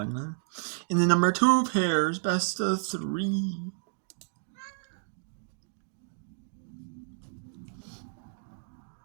on. In the number 2 pairs, best of 3.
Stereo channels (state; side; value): silent; left; digital silence